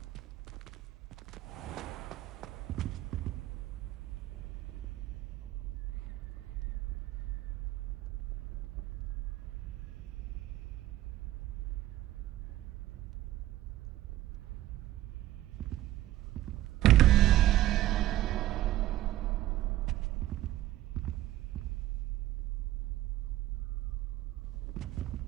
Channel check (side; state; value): left; quieter; 14.8 dB